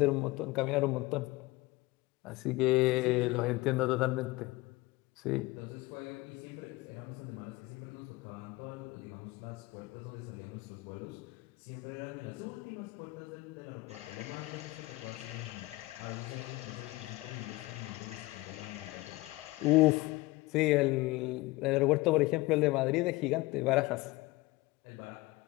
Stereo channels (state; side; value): quieter; right; 21.1 dB